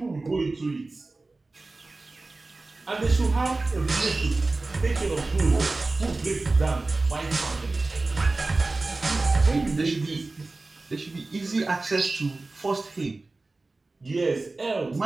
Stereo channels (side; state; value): left; quieter; 3.3 dB